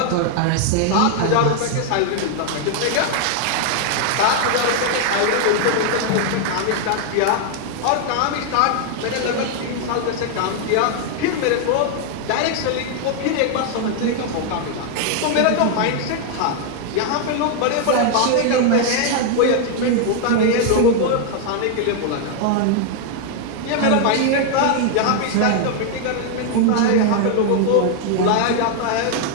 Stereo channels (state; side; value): different; both; correlation 0.00